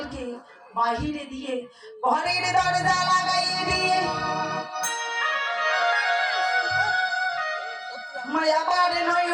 বাহিরে দিয়ে ঘরের দরজা লাগাইয়ে দিয়ে মায়াবার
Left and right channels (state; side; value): identical; both; correlation 1.00